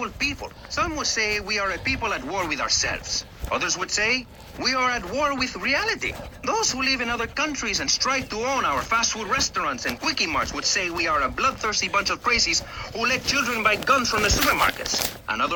people. Some would say we are a people at war with ourselves. Others would say we are at war with reality. Those who live in other countries and strive to own our fast food restaurants and quickie marts would say we are a bloodthirsty bunch of crazies who let children buy guns from the supermarkets.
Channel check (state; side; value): identical; both; correlation 1.00